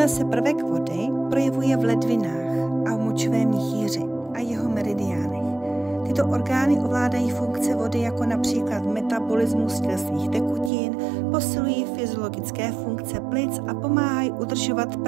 se prvek vody projevuje v ledvinách a v močovém měchýři a jeho meridiánech. Tyto orgány ovládají funkce vody jako například metabolismus tělesných tekutin, posilují fyziologické funkce plic a pomáhají udržovat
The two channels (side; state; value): left; drops out; at 10.7 s